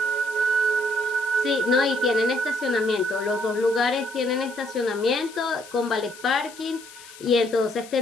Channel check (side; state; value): left; noise; hiss, 19 dB below the sound